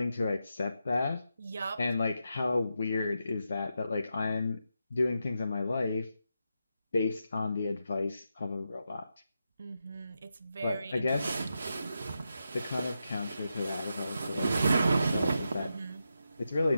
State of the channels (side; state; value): both; inverted; correlation -0.87